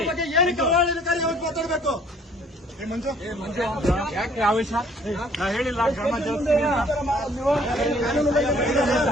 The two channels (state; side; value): normal; both; correlation 0.58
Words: ಬಗ್ಗೆ ಏನಕ್ಕೆ ಆಡಳಿತಕಾರಿ ಮಾತಾಡಬೇಕು? ಯಾಕೆ ಆವೇಶ? ನಾ ಹೇಳಿಲ್ಲ ಕ್ರಮ ಜರುಗಿಸ್ತೀನಿ ಅಂತ.